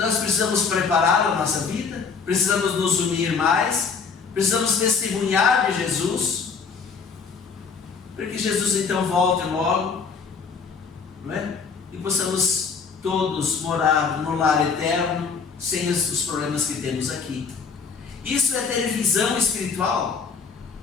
precisamos preparar a nossa vida, precisamos nos unir mais, precisamos testemunhar de Jesus, para que Jesus então volte logo, não é? E possamos todos morar no lar eterno, sem os problemas que temos aqui. Isso é ter visão espiritual,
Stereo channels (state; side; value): quieter; right; 5.5 dB